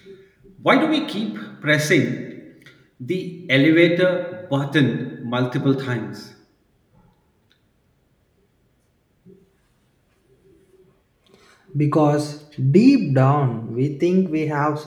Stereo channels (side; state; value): both; identical; correlation 1.00